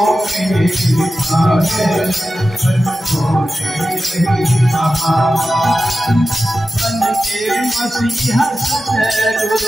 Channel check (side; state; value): both; normal; correlation 0.93